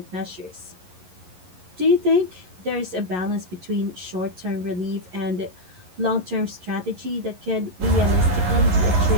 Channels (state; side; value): late; left; 11 ms